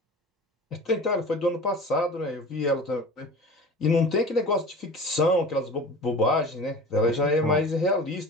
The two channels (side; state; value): both; normal; correlation 0.38